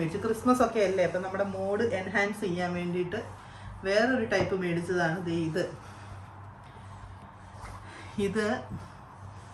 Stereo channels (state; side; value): identical; both; correlation 1.00